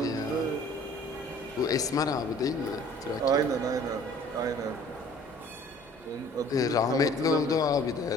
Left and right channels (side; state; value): both; normal; correlation 0.51